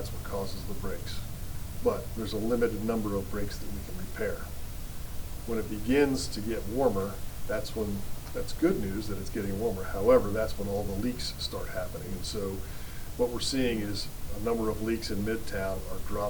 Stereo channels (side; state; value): both; identical; correlation 1.00